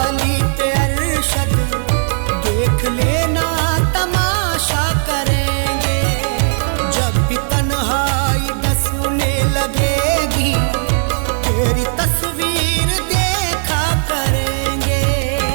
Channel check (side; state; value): left; silent; digital silence